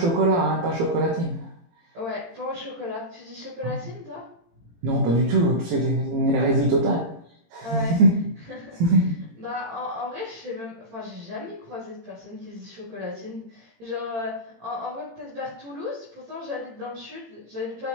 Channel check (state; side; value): late; left; 18 ms